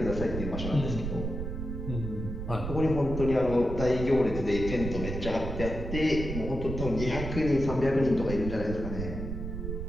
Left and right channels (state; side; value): noise; right; rumble, 5 dB below the sound